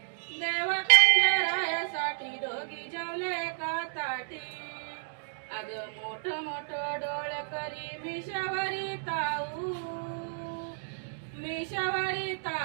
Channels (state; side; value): silent; left; digital silence